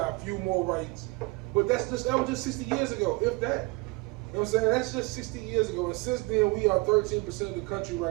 few more rights. But that was just 60 years ago, if that. You know what I'm saying? That's just 60 years ago. And since then, we are 13% of the country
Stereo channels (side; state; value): left; quieter; 25.5 dB